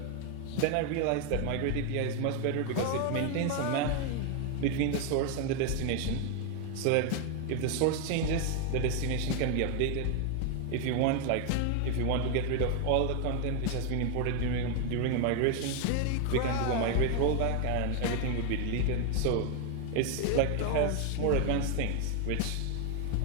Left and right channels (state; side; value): different; both; correlation 0.00